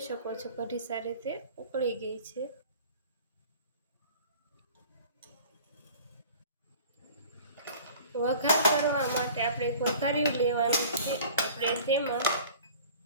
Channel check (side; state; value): both; inverted; correlation -0.45